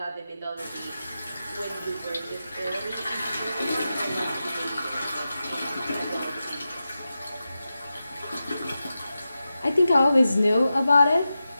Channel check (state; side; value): inverted; both; correlation -0.92